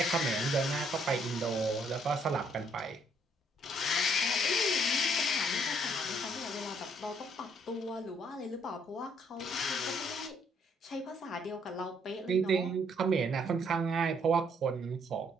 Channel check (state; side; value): normal; both; correlation 0.67